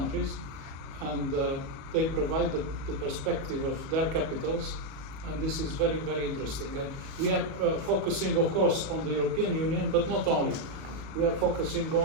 and they provide the perspective of their capitals, and this is very, very interesting. And we are focusing, of course, on the European Union, but not only. We are focusing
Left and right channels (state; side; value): late; left; 36 ms